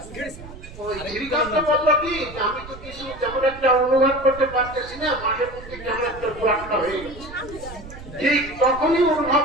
শ্রীকান্ত বললো কি আমি তো কিছু তেমন একটা অনুভব করতে পারতেছি না, মাঝে মধ্যে কেমন একটা ব্লকটা হয়ে গেছে। ঠিক তখনই অনুভব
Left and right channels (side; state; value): right; noise; rumble, 15 dB below the sound